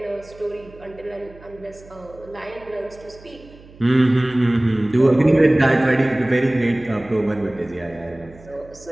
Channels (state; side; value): noise; right; hum, 22 dB below the sound